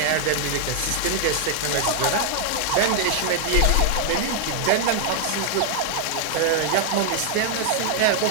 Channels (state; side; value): different; both; correlation -0.01